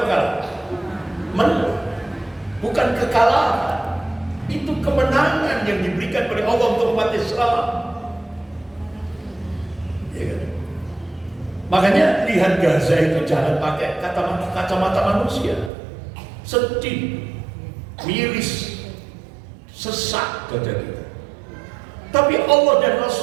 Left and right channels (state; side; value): drops out; left; at 15.7 s